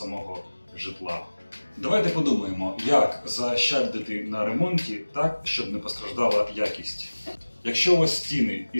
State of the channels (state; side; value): inverted; both; correlation -1.00